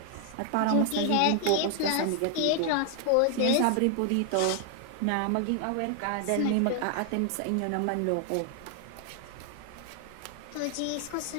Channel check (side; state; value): both; different; correlation 0.00